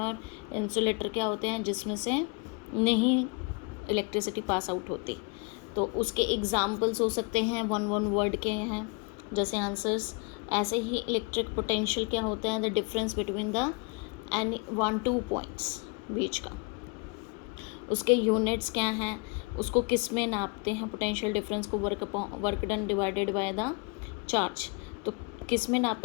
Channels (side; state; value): right; quieter; 32.7 dB